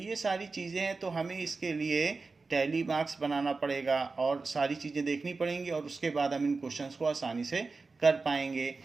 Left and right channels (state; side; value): quieter; left; 4.0 dB